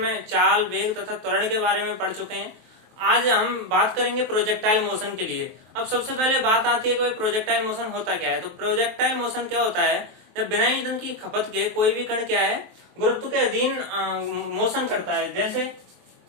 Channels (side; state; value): left; late; 23 ms